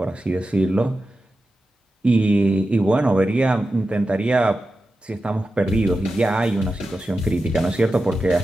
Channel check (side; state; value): both; normal; correlation 0.92